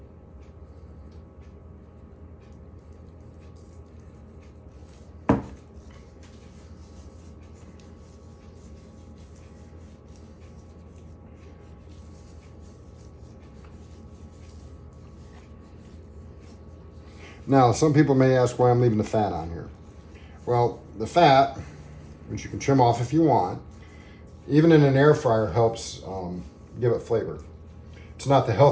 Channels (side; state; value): both; identical; correlation 1.00